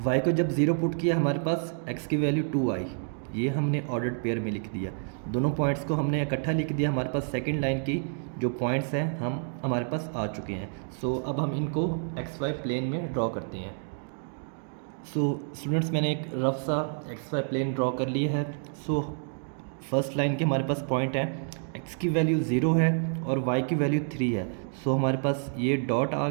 y को जब 0 पुट किया हमारे पास x की वैल्यू 2 आई, ये हमने ऑर्डर्ड पेयर में लिख दिया। दोनों पॉइंट्स को हमने इकट्ठा लिख दिया। हमारे पास सेकंड लाइन की जो पॉइंट्स हैं हमारे पास आ चुके हैं। सो अब हम इनको XY प्लेन में ड्रॉ करते हैं। सो स्टूडेंट्स, मैंने एक रफ सा XY प्लेन ड्रॉ कर लिया है। सो फर्स्ट लाइन के हमारे पास पॉइंट है, x की वैल्यू 0 है और y की वैल्यू 3 है। सो हमारे पास ये डॉट आ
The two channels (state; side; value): silent; left; 59 dB below the other